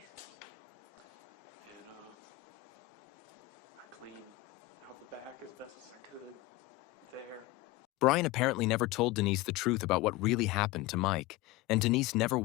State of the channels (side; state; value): right; quieter; 19.0 dB